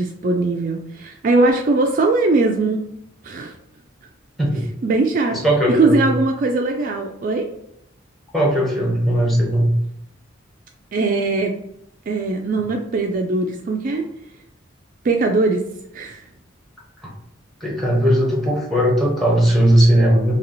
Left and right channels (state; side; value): normal; both; correlation 0.63